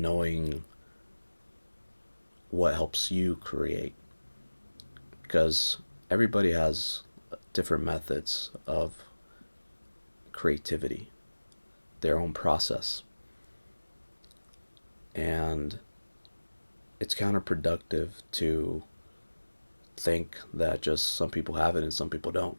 knowing what helps you create. Because everybody has different methods of creativity, their own process. And it's counterproductive to think that just some people have it and some people don't.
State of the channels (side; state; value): both; inverted; correlation -1.00